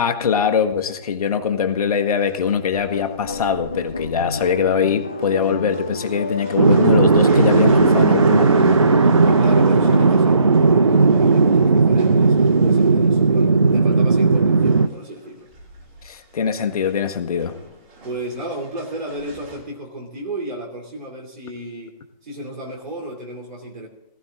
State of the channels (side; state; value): both; inverted; correlation -0.61